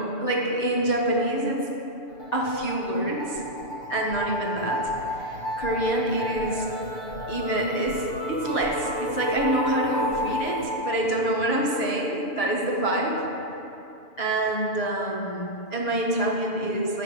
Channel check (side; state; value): right; late; 6.8 ms